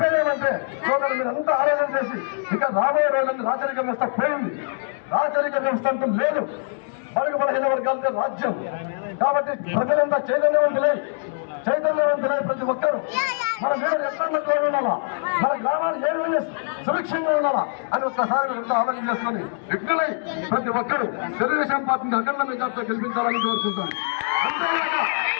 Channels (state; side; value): silent; right; digital silence